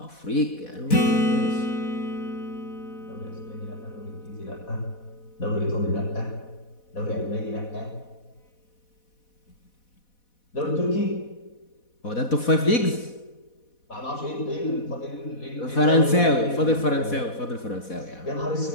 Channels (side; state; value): right; late; 4.1 ms